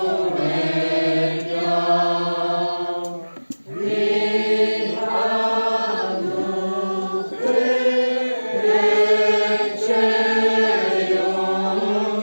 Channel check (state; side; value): inverted; both; correlation -1.00